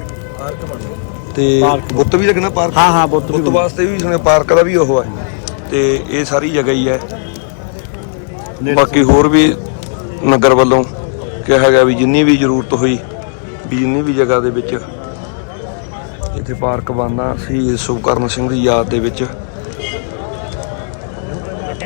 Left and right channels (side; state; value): right; silent; 71 dB below the other